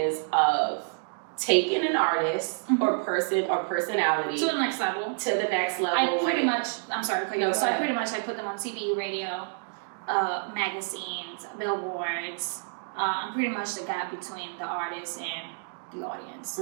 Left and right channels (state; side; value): silent; left; digital silence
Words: of taking an artist or person or personality to the next level. I pretty much I put them on TV, radio, magazines, billboards. I'm pretty much the gap between the artist and the audience.